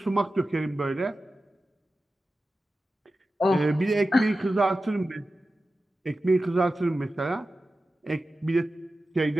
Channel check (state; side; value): normal; both; correlation 0.94